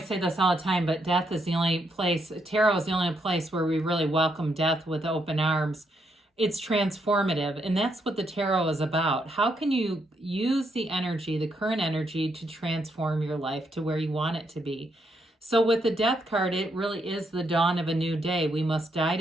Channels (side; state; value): both; normal; correlation 0.77